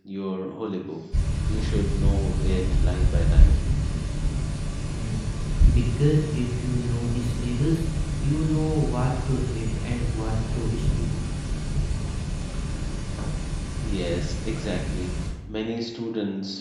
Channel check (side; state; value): both; identical; correlation 1.00